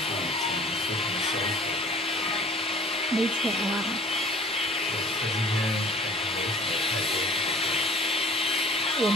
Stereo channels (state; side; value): normal; both; correlation 0.48